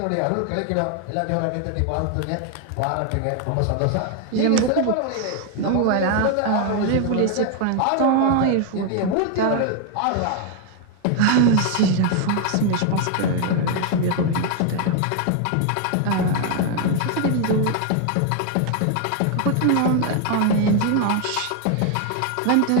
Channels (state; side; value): different; both; correlation 0.00